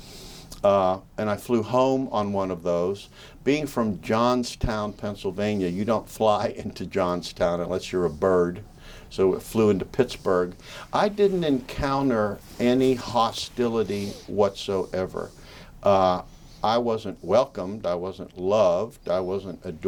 And I flew home on one of those. Being from Johnstown, Pennsylvania, you don't fly into Johnstown unless you're a bird. So it flew into Pittsburgh. I didn't encounter any hostility whatsoever. I wasn't welcomed, I wasn't loved, I wasn't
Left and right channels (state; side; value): identical; both; correlation 1.00